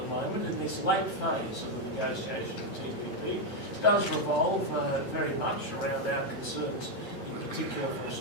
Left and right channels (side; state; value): right; late; 9.0 ms